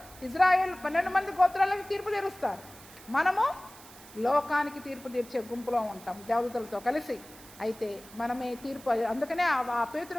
ఇజ్రాయెల్ 12 మంది గోత్రాలకు తీర్పు తీరుస్తారు. మనము లోకానికి తీర్పు తీర్చే గుంపులో ఉంటాం దేవదూతలతో కలిసి. అయితే మనమే తీర్పు. అందుకనే ఆ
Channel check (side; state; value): right; noise; hiss, 20 dB below the sound